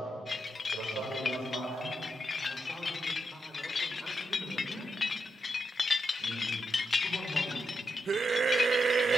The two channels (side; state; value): both; normal; correlation 0.84